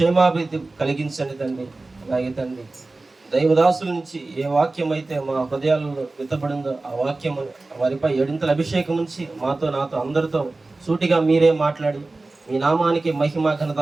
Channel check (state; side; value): quieter; left; 3.3 dB